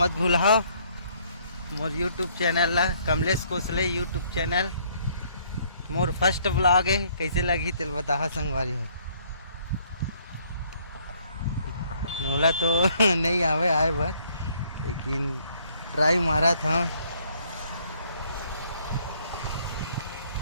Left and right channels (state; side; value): inverted; both; correlation -0.64